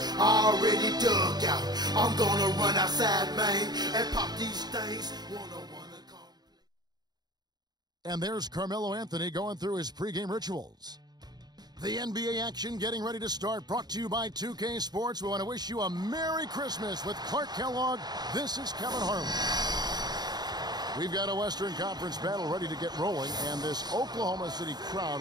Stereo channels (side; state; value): left; late; 0.20 ms